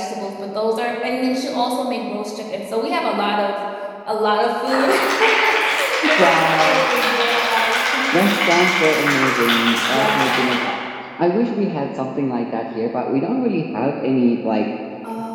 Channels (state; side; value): identical; both; correlation 1.00